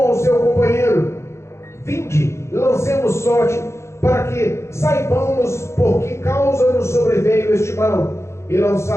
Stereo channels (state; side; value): late; right; 0.13 ms